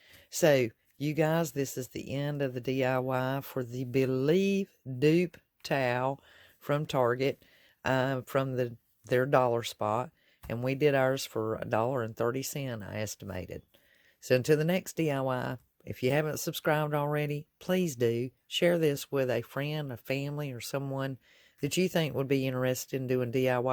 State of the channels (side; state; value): both; identical; correlation 1.00